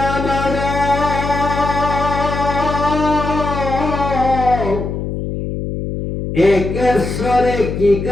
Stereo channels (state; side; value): noise; left; hum, 4 dB below the sound